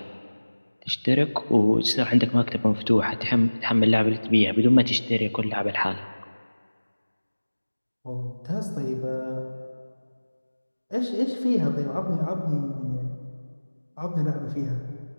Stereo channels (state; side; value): inverted; both; correlation -1.00